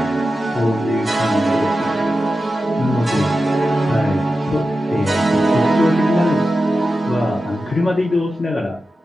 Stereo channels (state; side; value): normal; both; correlation 0.92